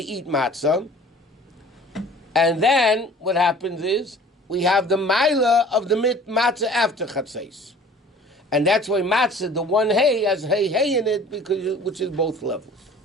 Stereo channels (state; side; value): normal; both; correlation 0.48